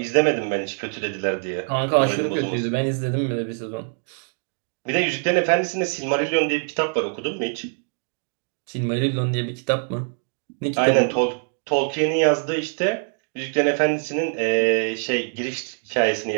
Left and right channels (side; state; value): left; silent; 56 dB below the other